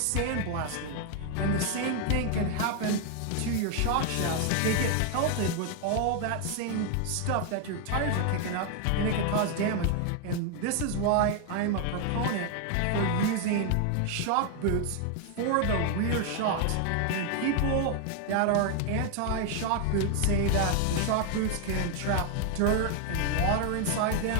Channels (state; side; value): different; both; correlation 0.01